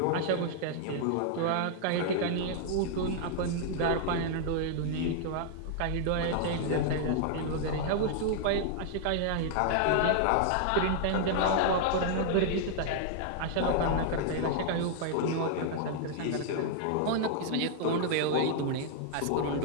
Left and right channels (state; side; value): different; both; correlation -0.01